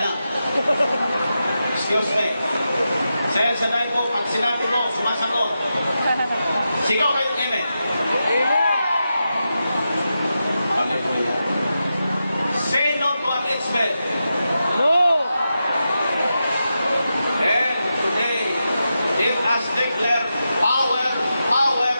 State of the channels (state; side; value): inverted; both; correlation -0.89